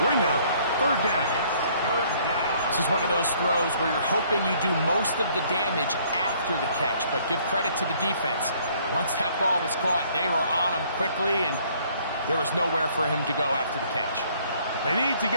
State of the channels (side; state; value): both; inverted; correlation -0.61